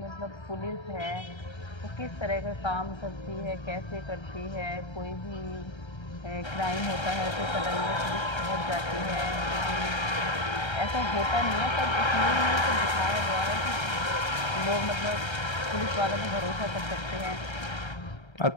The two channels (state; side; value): late; right; 1.3 ms